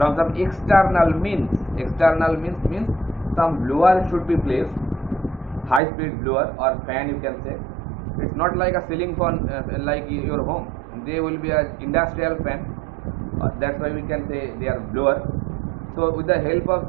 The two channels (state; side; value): drops out; left; at 5.8 s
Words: some external means. External means some blower should be placed, high speed blower or fan, you can say. It's not like a ceiling fan like your home. They will be an industrial fan. That's why we can say they are blower. So with the help of